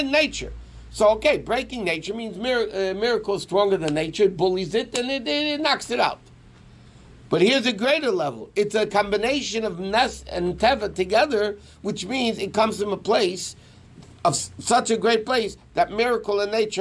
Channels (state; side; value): identical; both; correlation 1.00